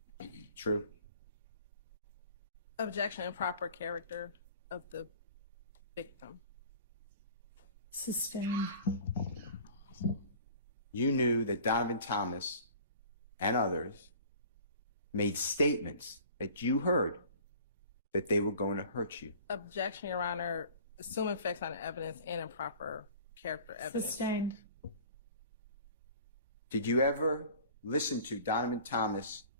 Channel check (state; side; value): inverted; both; correlation -0.46